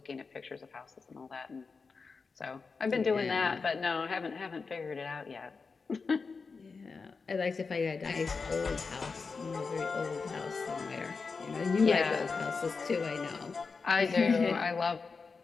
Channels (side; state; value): right; quieter; 4.7 dB